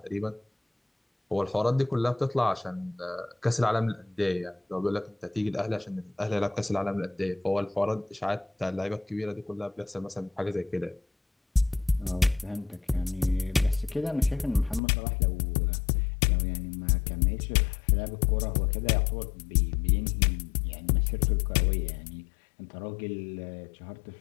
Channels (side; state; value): right; drops out; at 14.8 s